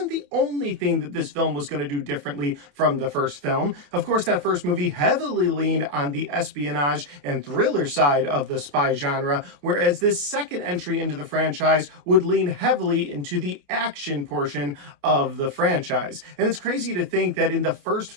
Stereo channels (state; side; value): late; left; 28 ms